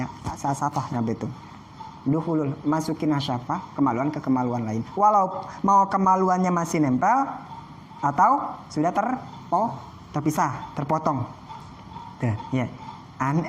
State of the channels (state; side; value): identical; both; correlation 1.00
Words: hasyafa sampai itu. Duhulul, masukin hasyafa, kemaluan ke kemaluan lain. Walau mau kemaluannya masih nempel atau sudah terpisah, terpotong. Tuh, ya.